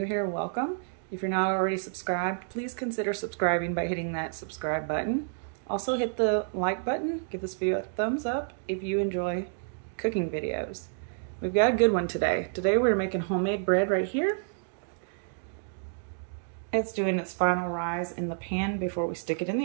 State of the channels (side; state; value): left; silent; digital silence